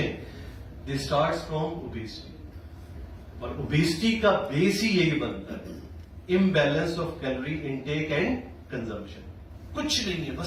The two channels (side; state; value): both; identical; correlation 1.00